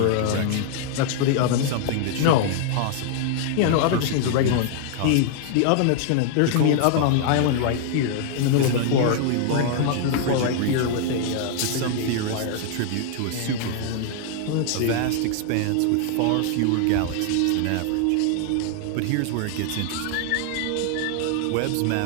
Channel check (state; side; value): different; both; correlation 0.00